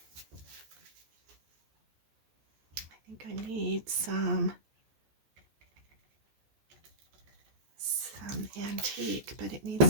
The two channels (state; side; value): late; left; 14 ms